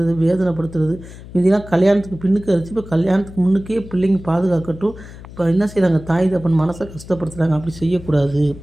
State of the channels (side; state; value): left; noise; hum, 16 dB below the sound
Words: வேதனைப்படுத்துறது. முந்திலாம் கல்யாணத்துக்கு பின்னுக்கு அடிச்சு, இப்போ கல்யாணத்துக்கு முன்னுக்கே பிள்ளைங்க பாதுகாக்கட்டும். இப்போ என்ன செய்கிறாங்க, தாய் தப்பன் மனசை கஷ்டப்படுத்துகிறாங்க. அப்படி செய்யக்கூடாது.